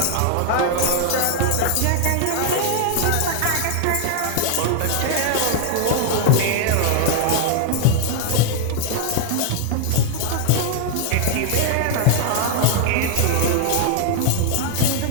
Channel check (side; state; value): both; different; correlation -0.01